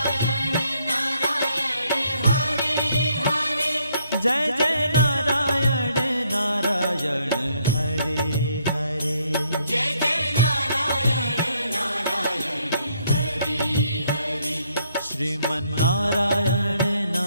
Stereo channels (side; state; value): both; inverted; correlation -0.70